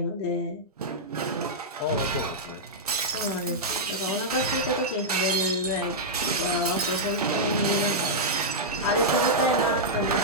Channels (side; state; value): both; normal; correlation -0.08